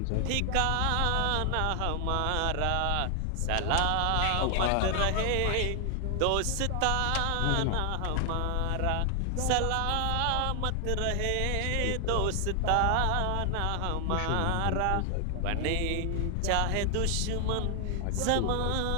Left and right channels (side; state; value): both; different; correlation 0.00